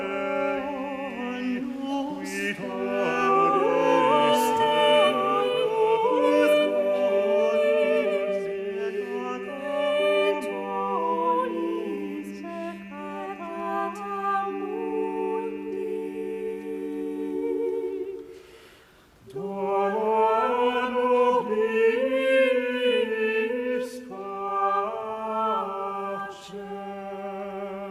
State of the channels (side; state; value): both; identical; correlation 1.00